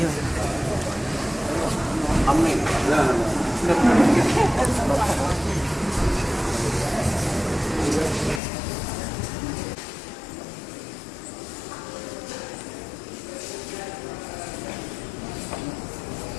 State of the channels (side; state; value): right; drops out; at 8.4 s